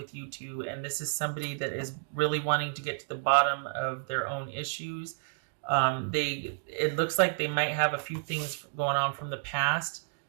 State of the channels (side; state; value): left; silent; digital silence